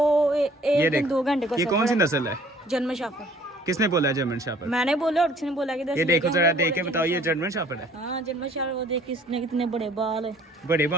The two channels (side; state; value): both; normal; correlation 0.55